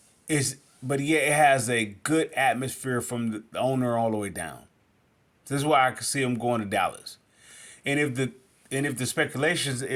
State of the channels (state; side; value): identical; both; correlation 1.00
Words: is but yet it has a good atmosphere from the owner all the way down. This is why I can see him going to Dallas. And if the speculations